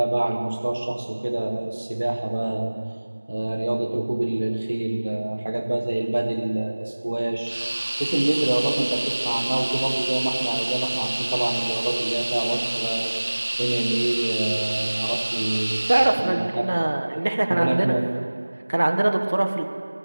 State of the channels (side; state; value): both; inverted; correlation -1.00